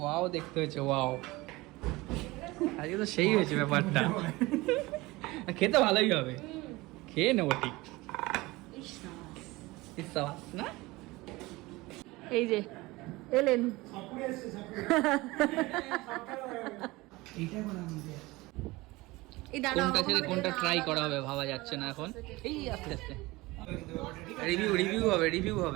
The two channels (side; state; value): left; quieter; 21.2 dB